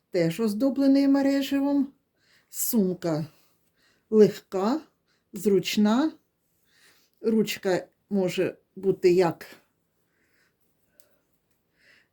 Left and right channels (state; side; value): identical; both; correlation 1.00